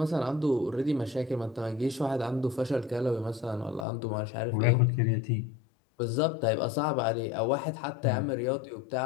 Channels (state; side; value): drops out; right; at 3.9 s